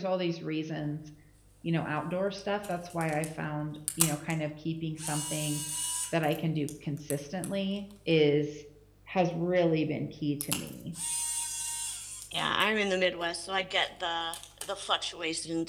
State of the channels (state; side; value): identical; both; correlation 1.00